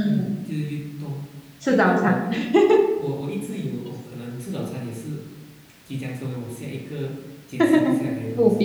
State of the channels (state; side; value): identical; both; correlation 1.00